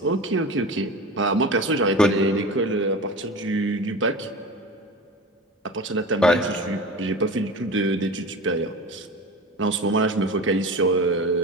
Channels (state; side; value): normal; both; correlation 0.31